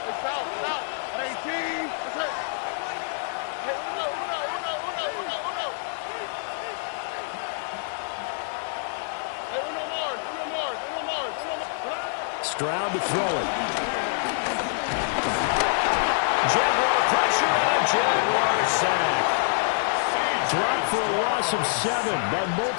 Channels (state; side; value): silent; right; 61 dB below the other